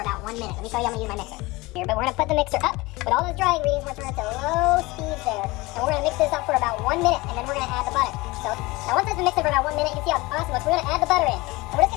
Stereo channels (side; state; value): right; quieter; 22.2 dB